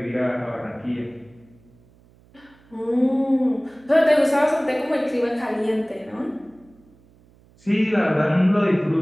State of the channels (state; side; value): noise; right; hum, 29 dB below the sound